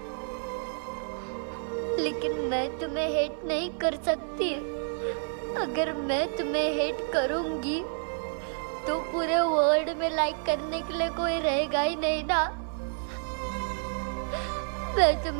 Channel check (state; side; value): silent; left; 58 dB below the other